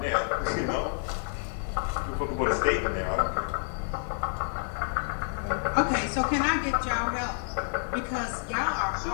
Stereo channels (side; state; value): right; silent; digital silence